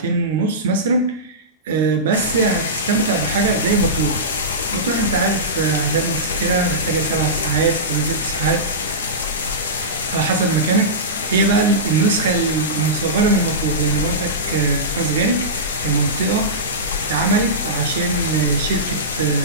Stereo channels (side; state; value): both; normal; correlation -0.18